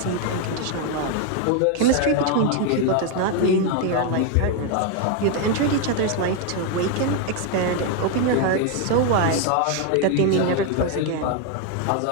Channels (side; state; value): both; different; correlation 0.01